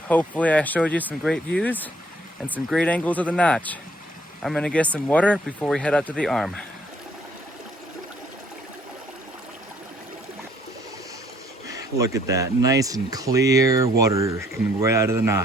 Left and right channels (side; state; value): both; normal; correlation 0.64